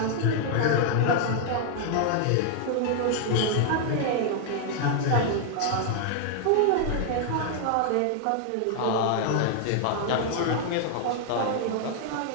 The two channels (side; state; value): both; different; correlation 0.00